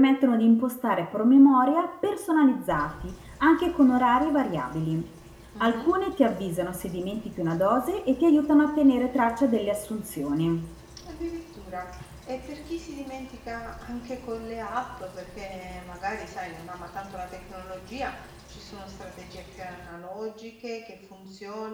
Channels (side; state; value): both; identical; correlation 1.00